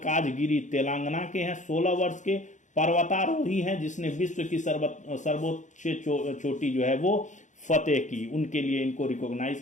तेलंगाना के हैं, 16 वर्ष के, पर्वतारोही हैं, जिसने विश्व की सर्वोच्च चोटी जो है वो फतेह की, उनके लिए इनको रिकॉग्नाइज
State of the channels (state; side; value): late; right; 0.36 ms